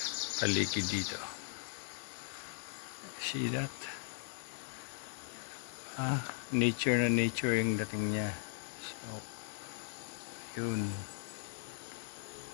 paligid dito. See that? Nature na nature yung dating niya. So, yun.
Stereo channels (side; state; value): right; silent; digital silence